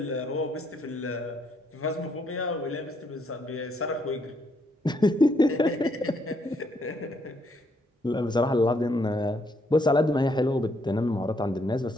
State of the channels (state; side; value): normal; both; correlation 0.72